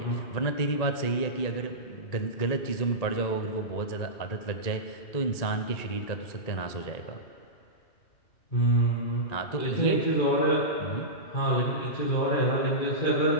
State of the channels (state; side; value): late; right; 1.9 ms